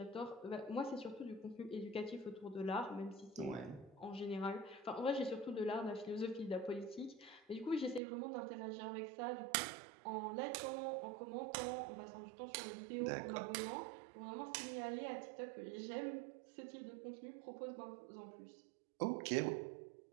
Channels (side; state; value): left; drops out; at 8.0 s